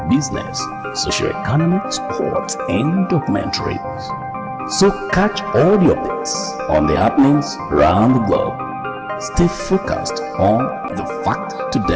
business, socio-economic, sports, and documentaries. So catch all the updates on the happenings around the globe. Stay focused on the fact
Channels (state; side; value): identical; both; correlation 1.00